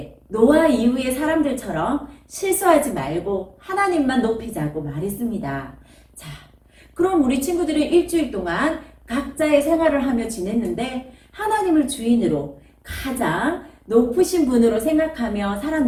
노아 이후의 사람들처럼 실수하지 말고 하나님만 높이자고 말했습니다. 자, 그럼 우리 친구들은 일주일 동안 각자의 생활을 하며 지냈는데 하나님을 주인으로 가장 높으신 분으로 생각하며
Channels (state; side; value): identical; both; correlation 1.00